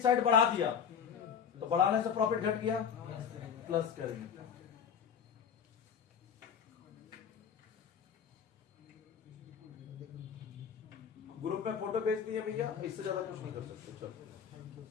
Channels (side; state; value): right; quieter; 7.5 dB